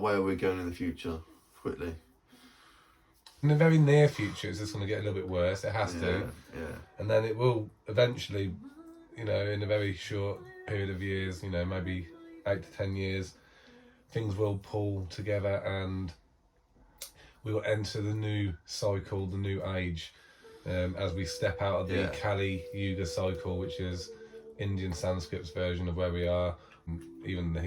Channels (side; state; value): both; identical; correlation 1.00